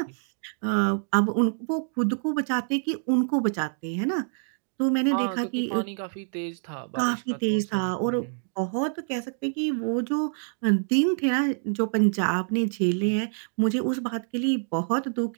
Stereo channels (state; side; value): silent; left; digital silence